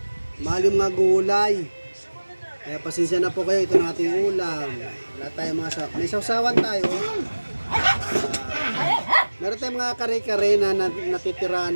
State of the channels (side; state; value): both; inverted; correlation -1.00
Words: Mahal yung mga gulay. Kaya pasensya na po kayo, ito na ating ulam. Wala tayong mga may sausawan tayo. Meron tayong mga kare-kare na natitira